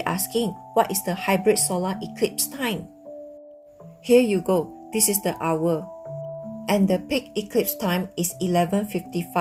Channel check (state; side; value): identical; both; correlation 1.00